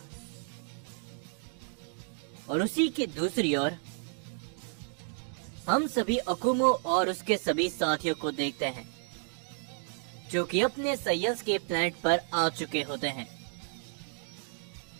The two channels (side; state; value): left; silent; 57 dB below the other